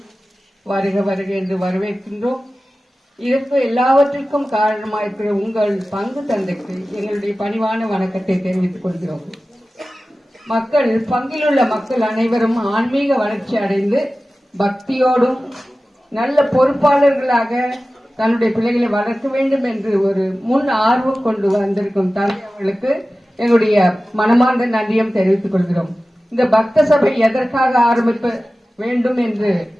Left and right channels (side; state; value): both; normal; correlation 0.96